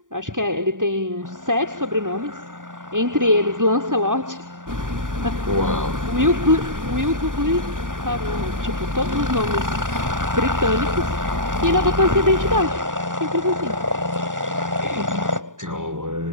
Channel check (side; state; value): left; late; 0.88 ms